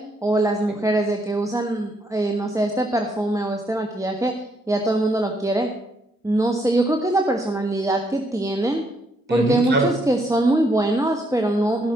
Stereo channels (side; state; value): both; normal; correlation 0.73